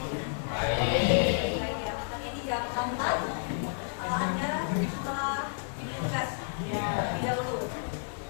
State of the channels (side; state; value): right; silent; 57 dB below the other